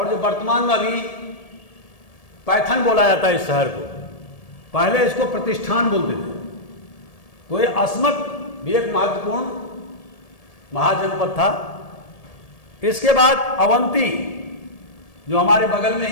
जो वर्तमान में अभी पैथन बोला जाता है इस शहर को, पहले इसको प्रतिष्ठान बोलते थे। तो ये अस्मक भी एक महत्वपूर्ण महाजनपद था। इसके बाद अवंती, जो हमारे बगल में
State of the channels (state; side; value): late; right; 1.7 ms